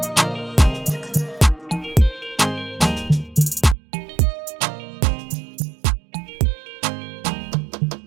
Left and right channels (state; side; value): drops out; left; at 3.8 s